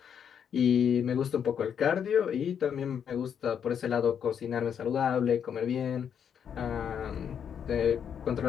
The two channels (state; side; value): quieter; right; 8.1 dB